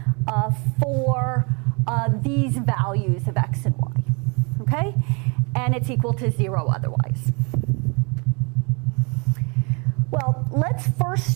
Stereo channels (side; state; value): left; quieter; 32.4 dB